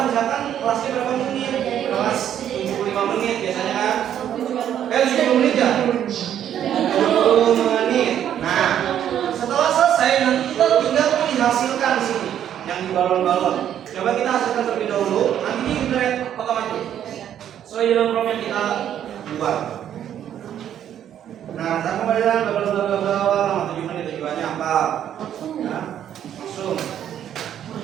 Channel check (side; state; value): left; quieter; 10.2 dB